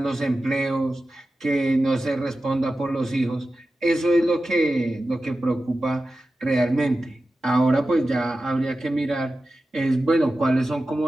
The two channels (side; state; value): both; normal; correlation 0.93